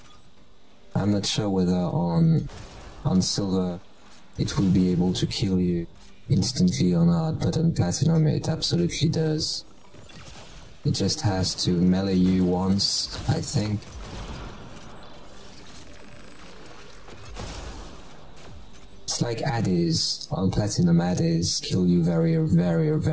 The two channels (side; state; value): both; identical; correlation 1.00